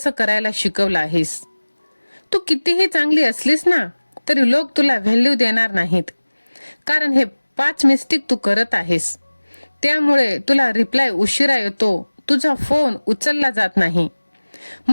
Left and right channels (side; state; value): both; inverted; correlation -1.00